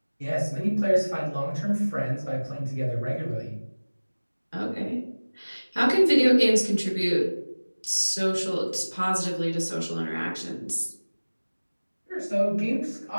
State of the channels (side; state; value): both; inverted; correlation -1.00